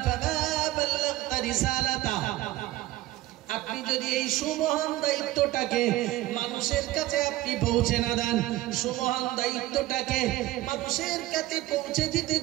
ফামা বাল্লাগতা রিসালাতা, আপনি যদি এই সুমহান দায়িত্বটাকে মানুষের কাছে আপনি পৌঁছে না দেন, সুমহান দায়িত্বটাকে মানুষের কাছে পৌঁছে দিতে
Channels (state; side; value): quieter; left; 16.5 dB